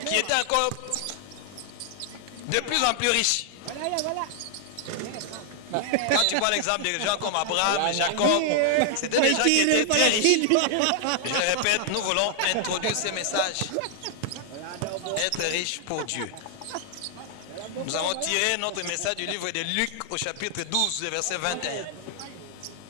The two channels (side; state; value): both; different; correlation 0.00